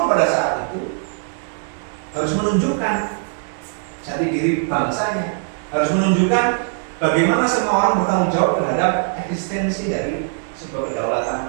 pada saat itu harus menunjukkan jati diri bangsanya, harus menunjukkan bagaimana semua orang bertanggung jawab terhadap eksistensi dari sebuah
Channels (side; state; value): left; silent; digital silence